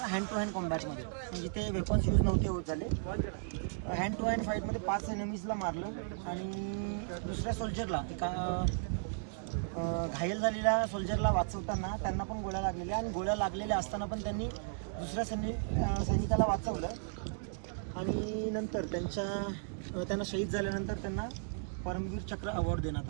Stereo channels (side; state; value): left; silent; digital silence